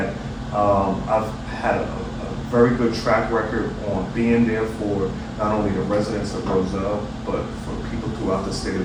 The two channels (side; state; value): both; identical; correlation 1.00